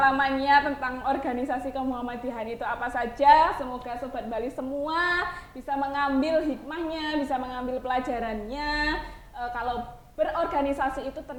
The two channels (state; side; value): identical; both; correlation 1.00